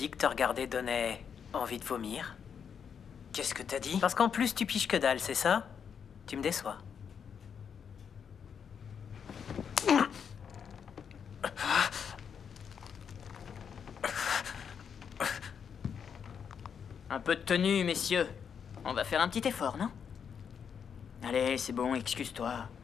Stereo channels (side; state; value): right; quieter; 7.2 dB